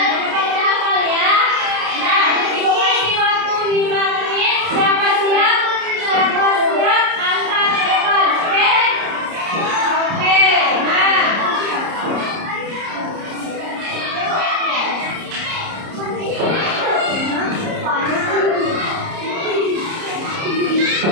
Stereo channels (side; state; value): left; late; 30 ms